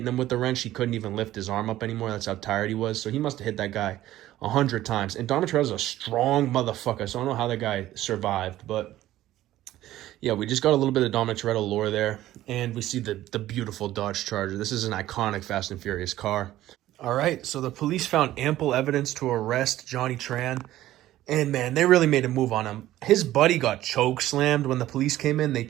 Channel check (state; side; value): quieter; left; 14.5 dB